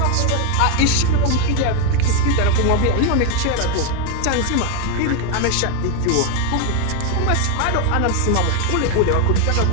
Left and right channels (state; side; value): different; both; correlation 0.01